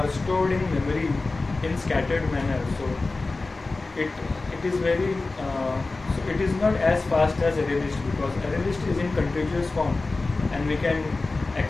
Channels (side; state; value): right; quieter; 3.5 dB